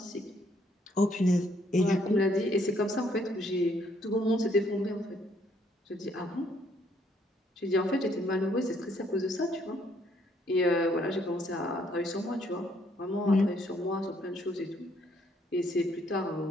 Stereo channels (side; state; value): both; normal; correlation 0.68